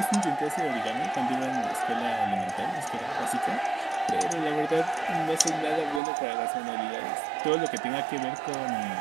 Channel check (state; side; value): drops out; left; at 6.0 s